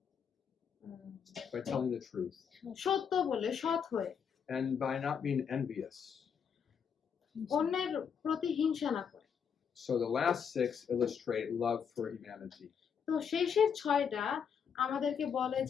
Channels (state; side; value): quieter; right; 7.1 dB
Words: By telling the truth. সত্য বলে, সৎ হয়ে, And by not being envious. অন্যের প্রতি হিংসা না করে। So the last 6 illustrate love for humanity. তো শেষের 6টা আমাদেরকে বলে